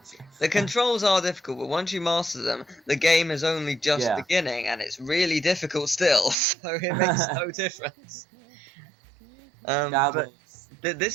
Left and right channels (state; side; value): drops out; left; at 6.4 s